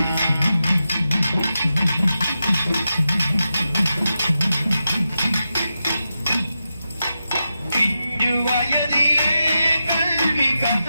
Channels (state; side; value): inverted; both; correlation -0.89